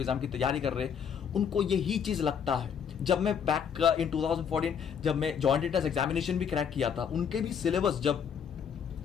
एग्जाम की तैयारी कर रहे हैं, उनको यही चीज लगता है। जब मैं बैक इन 2014 जब मैं जॉइंट एंट्रेंस एग्जामिनेशन भी क्रैक किया था, उनके भी सिलेबस, जब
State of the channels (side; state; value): right; quieter; 7.5 dB